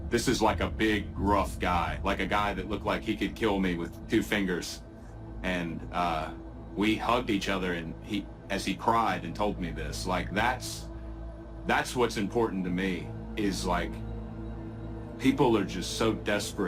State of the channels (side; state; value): both; identical; correlation 1.00